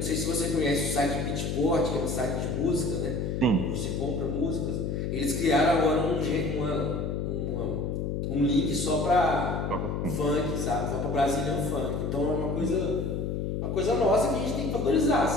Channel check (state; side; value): noise; left; hum, 1 dB below the sound